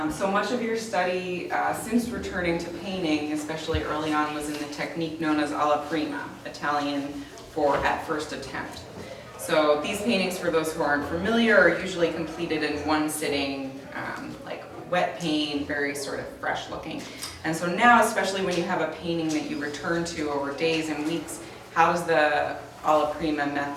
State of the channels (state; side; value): identical; both; correlation 1.00